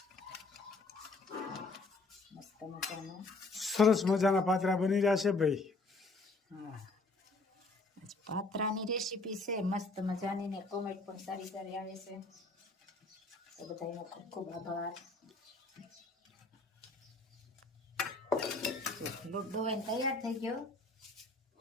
મસ્ત મજાના સરસ મજાના પાત્રા બની રહ્યા છે ભાઈ. હા, આજ પાત્રાની રેસીપી છે મસ્ત મજાની ને કોમેન્ટ પણ સારી સારી આવે છે. તો બધાનો ખૂબ ખૂબ આભાર. લોટ ડોવાઈને તૈયાર થઈ ગયો.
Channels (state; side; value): quieter; right; 3.3 dB